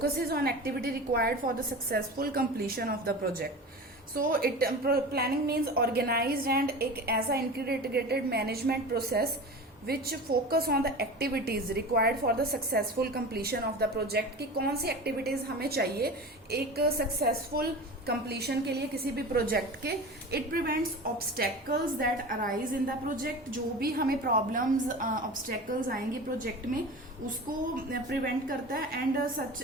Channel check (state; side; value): normal; both; correlation 0.33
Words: on activity required for the successful completion of the project. So planning means organized and एक ऐसा integrated management process which focus on the activities required for the successful completion of the project, कि कौन सी activities हमें चाहिए एक successful completion के लिए किसी भी project के. It prevents obstacles that arise in the project. जो भी हमें problems obstacles आएंगे project में उसको prevent करता है, and such